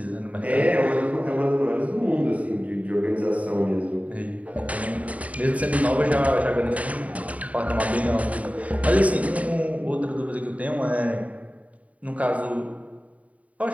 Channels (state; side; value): late; left; 0.068 ms